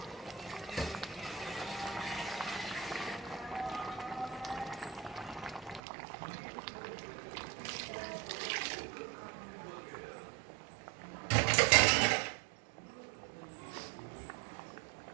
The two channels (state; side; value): drops out; left; at 5.8 s